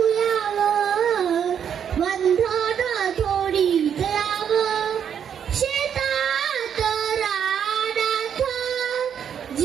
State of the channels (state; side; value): quieter; left; 8.3 dB